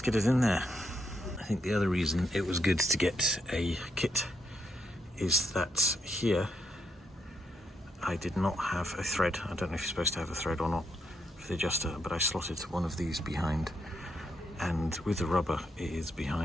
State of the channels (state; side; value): normal; both; correlation 0.79